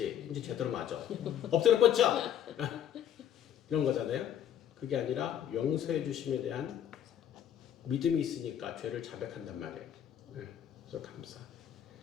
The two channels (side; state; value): right; quieter; 10.0 dB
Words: 이제 제대로 맞아. 엎드려 뻗쳐! 이런 거잖아요. 그게 아니라 용서해 주심에 대한 믿음이 있으니까 죄를 자백한단 말이에요. 네. 그래서 감사.